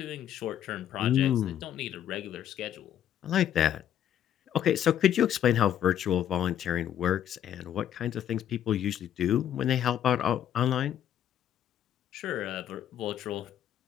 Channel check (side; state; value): right; quieter; 10.4 dB